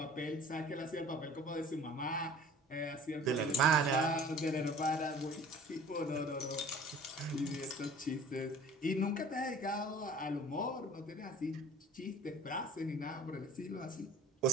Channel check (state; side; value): normal; both; correlation 0.46